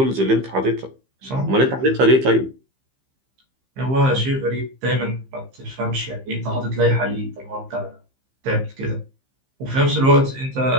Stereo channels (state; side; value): late; left; 15 ms